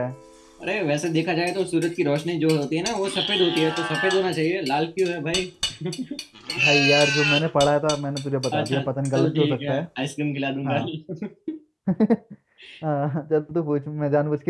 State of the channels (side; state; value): both; identical; correlation 1.00